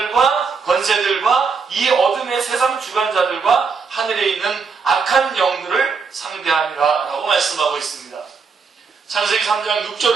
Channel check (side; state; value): left; quieter; 5.3 dB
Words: 권세들과 이 어둠의 세상 주관자들과 하늘에 있는 악한 영들을 상대함이라 라고 말씀하고 있습니다. 창세기 3장